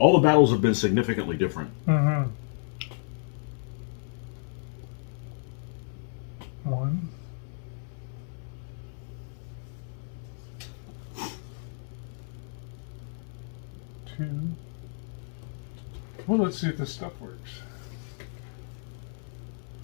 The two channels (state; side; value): silent; right; digital silence